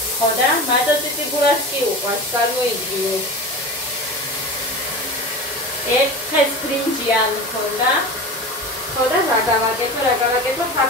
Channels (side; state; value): both; normal; correlation 0.30